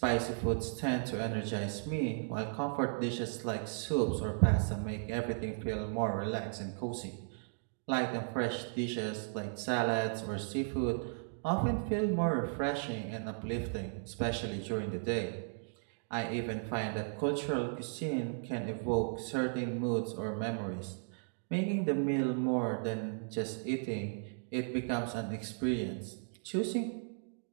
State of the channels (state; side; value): silent; left; digital silence